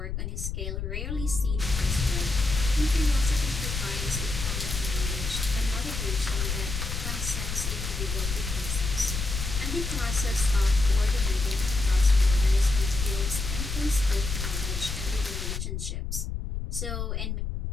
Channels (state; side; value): noise; left; rumble, 4 dB below the sound